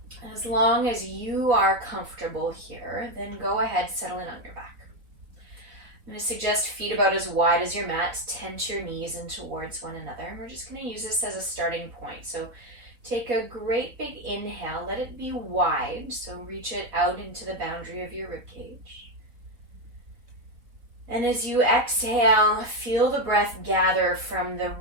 as long as you are comfortable here, then go ahead, settle in on your back. I'm going to suggest feet about as wide as your mat. Tense your knees in towards one another. And we're just going to use this as a starting point. So take a great big inhale. Let it be wide. So reach it out into the boundary of your ribcage. And as you exhale, feel the breath gather from the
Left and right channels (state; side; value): late; left; 3.9 ms